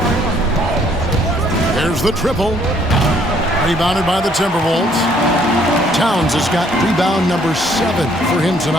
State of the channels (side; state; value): both; normal; correlation 0.64